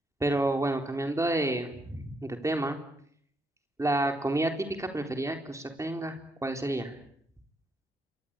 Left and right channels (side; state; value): both; normal; correlation 0.76